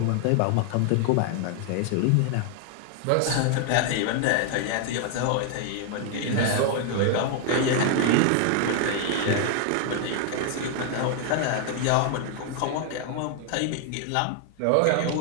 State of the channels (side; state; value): both; different; correlation 0.00